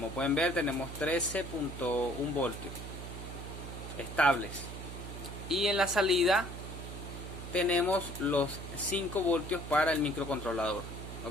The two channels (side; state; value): right; noise; hum, 9 dB below the sound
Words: pueden ver, tenemos 13.1 voltios estables. Y en la salida tenemos los 5 voltios para el microcontrolador.